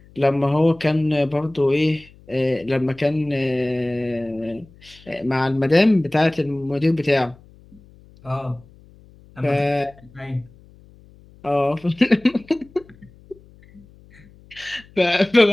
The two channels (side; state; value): left; noise; hum, 26 dB below the sound